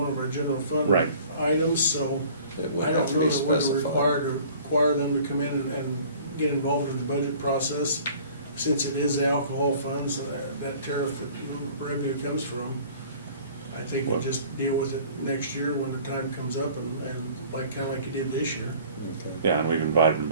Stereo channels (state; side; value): inverted; both; correlation -0.50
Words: of our general fund Right. items, so it would I have don't to know be that we're specified. require them to come in and get involved in the budget process, since it is the alcohol funds, that tariff that revenue comes from. I think we'll just deal with it next year when the time comes up, and kinda like you did this year. Okay. Yeah, and we've invited them